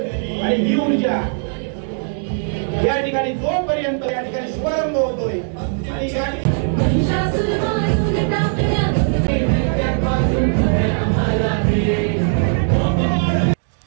आणि ही ऊर्जा या ठिकाणी जोपर्यंत या ठिकाणी शुभारंभ होतोय आणि या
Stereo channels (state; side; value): silent; left; digital silence